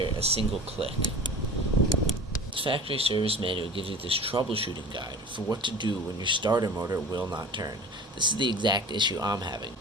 a single click. The factory service manual gives you this troubleshooting guide for what to do when your starter motor will not turn. This is the exact issue I'm having.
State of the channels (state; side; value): normal; both; correlation 0.39